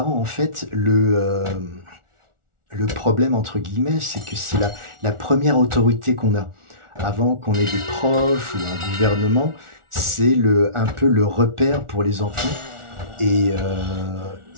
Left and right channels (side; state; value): left; late; 1.4 ms